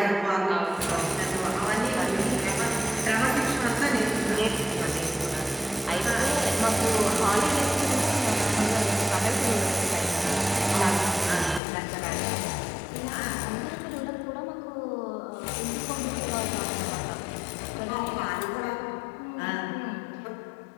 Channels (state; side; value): drops out; right; at 11.6 s